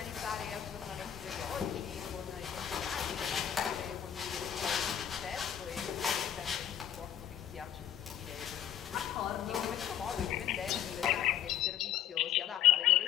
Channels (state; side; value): quieter; right; 10.4 dB